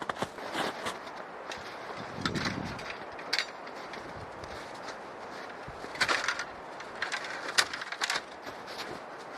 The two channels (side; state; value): both; identical; correlation 1.00